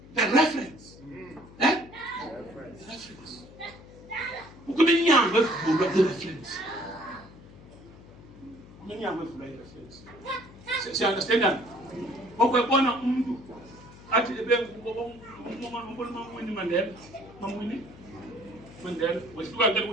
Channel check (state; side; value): noise; left; hum, 20 dB below the sound